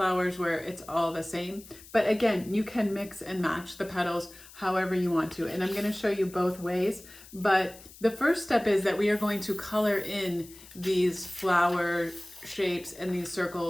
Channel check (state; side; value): noise; left; hiss, 20 dB below the sound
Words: where it's all the same. But again, you can mix and match the petals however you want to. And I'm going to show you both ways. But the first step is that we are going to color in these flower shapes and these